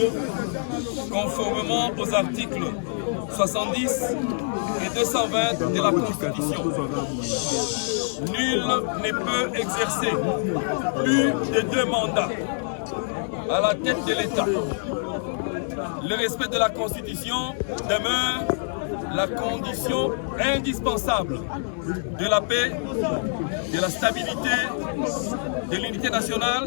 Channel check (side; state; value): right; silent; digital silence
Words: conformément aux articles 70 et 220 de la Constitution. Nul ne peut exercer plus de 2 mandats à la tête de l'État. Le respect de la Constitution demeure la condition indispensable de la paix, de la stabilité, de l'unité